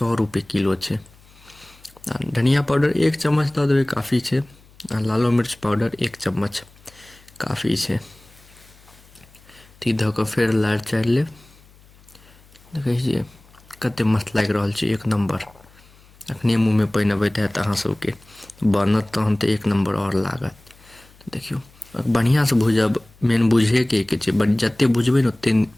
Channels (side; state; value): left; noise; hum, 27 dB below the sound